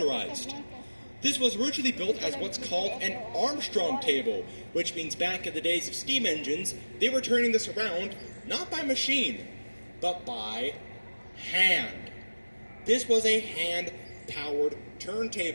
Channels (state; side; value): inverted; both; correlation -1.00